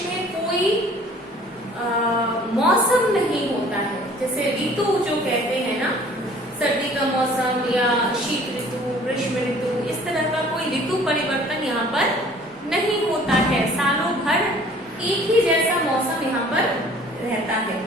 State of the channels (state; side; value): normal; both; correlation 0.52